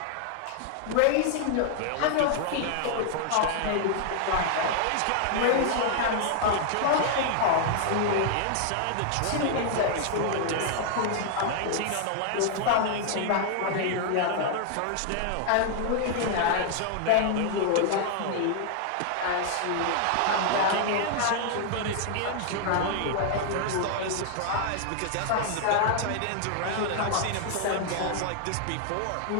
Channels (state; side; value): different; both; correlation 0.00